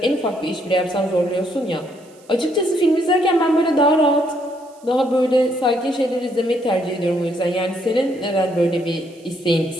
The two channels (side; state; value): right; noise; hiss, 29 dB below the sound